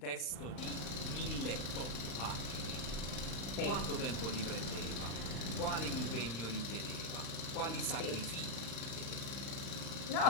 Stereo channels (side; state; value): right; late; 35 ms